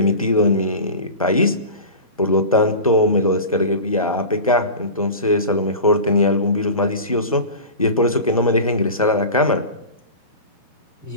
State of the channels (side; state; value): both; inverted; correlation -0.32